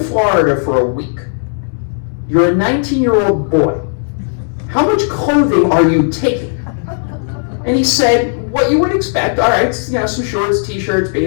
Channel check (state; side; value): silent; right; digital silence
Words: for a week. You're a 19-year-old boy. How much clothing are you taking? And he said, what you would expect. All right, some shorts, t-shirts,